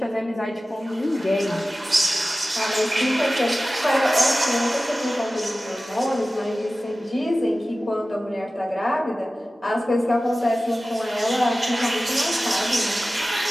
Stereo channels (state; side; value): normal; both; correlation 0.96